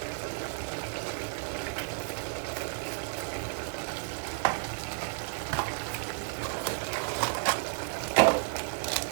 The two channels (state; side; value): silent; left; digital silence